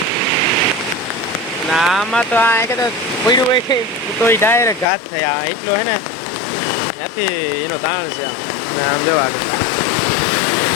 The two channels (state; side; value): drops out; right; at 4.9 s